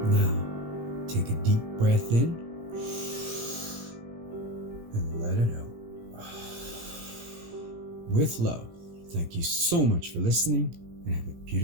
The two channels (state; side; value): late; left; 17 ms